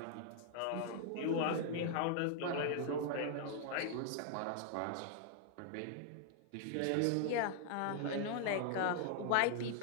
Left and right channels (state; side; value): different; both; correlation 0.00